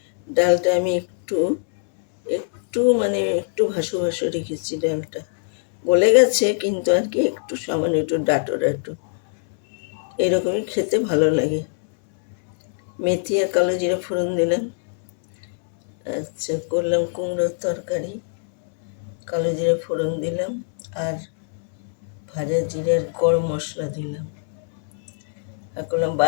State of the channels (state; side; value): silent; right; 64 dB below the other